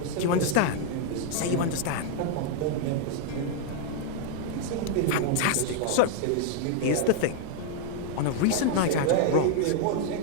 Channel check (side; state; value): both; different; correlation 0.00